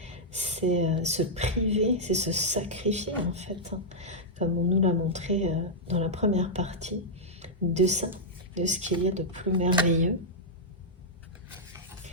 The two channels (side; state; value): both; normal; correlation -0.08